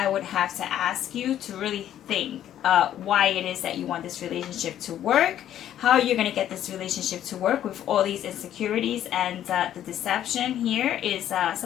would have to ask you to really think why it is that you want this relationship to work, how you're going to get this relationship to work with all these insecurities, and the deception here is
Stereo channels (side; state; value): right; quieter; 11.2 dB